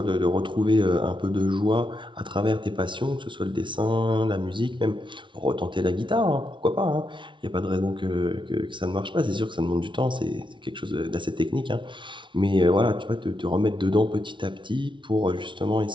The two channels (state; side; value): late; left; 0.24 ms